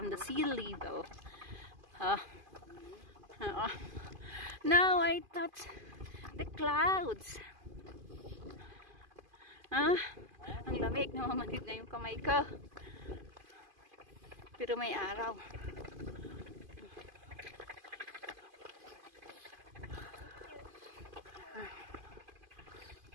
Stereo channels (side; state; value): left; late; 2.5 ms